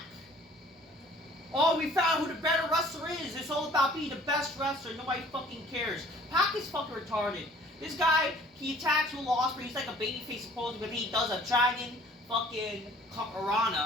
Oh, we found who the better wrestler is. It's all about being the best wrestler. Nobody fucking cares. Pac is fucking retarded. This guy, he attacks Will Ospreay. He's like a babyface supposedly, but he does a dragon fucking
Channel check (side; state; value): both; normal; correlation 0.53